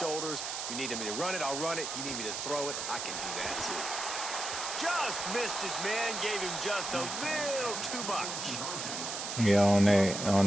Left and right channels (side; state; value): right; noise; hiss, 4 dB below the sound